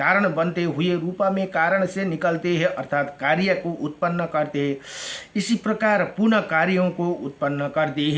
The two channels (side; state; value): both; identical; correlation 1.00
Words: बनते हुए रूपा में कारण से निकलते हैं, अर्थात कार्य को उत्पन्न करते हैं, इसी प्रकार पुनः कार्यों को उत्पन्न करते